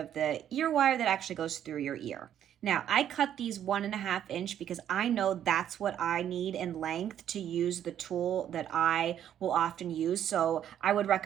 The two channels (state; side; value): quieter; left; 10.3 dB